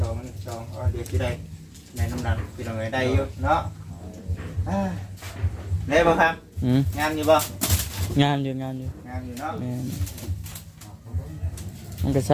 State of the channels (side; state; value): both; identical; correlation 1.00